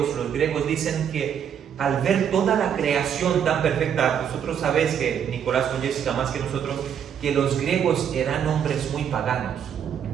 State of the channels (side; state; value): left; quieter; 8.4 dB